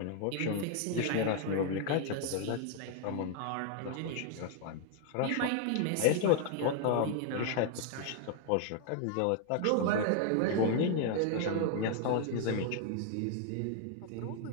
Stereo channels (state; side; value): different; both; correlation 0.00